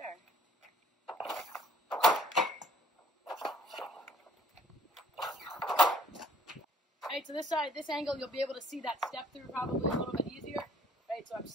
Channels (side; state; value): both; normal; correlation 0.61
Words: Right, so this side, this angle, you'll be able to see that step through probably a little bit easier. Right, so I'm